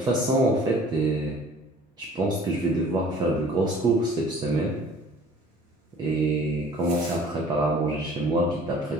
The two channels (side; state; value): both; normal; correlation 0.50